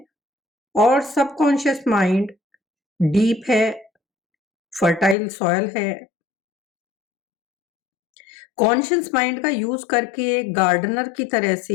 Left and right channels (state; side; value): drops out; right; at 5.2 s